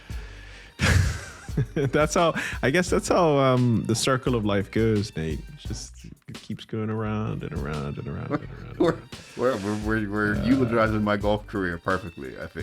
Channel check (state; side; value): identical; both; correlation 1.00